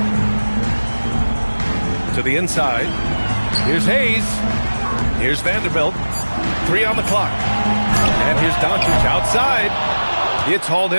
To the inside. Here's Hayes. Here's Vanderbilt. 3 on the clock. And here's Doncic outside. It's hauled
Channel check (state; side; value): inverted; both; correlation -1.00